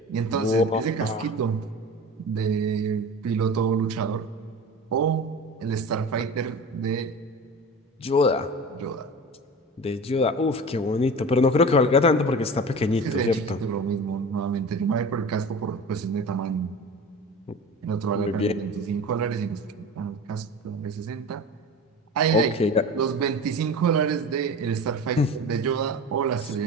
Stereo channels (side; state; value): both; normal; correlation 0.34